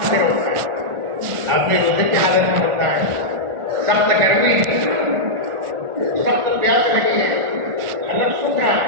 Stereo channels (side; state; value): left; late; 1.4 ms